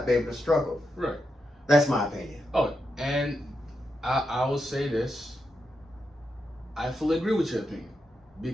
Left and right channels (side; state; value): both; normal; correlation 0.85